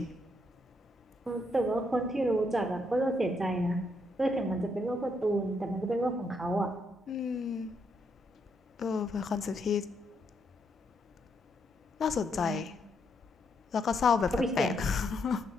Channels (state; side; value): normal; both; correlation 0.76